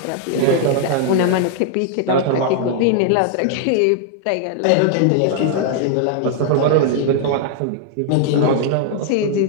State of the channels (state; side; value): different; both; correlation 0.00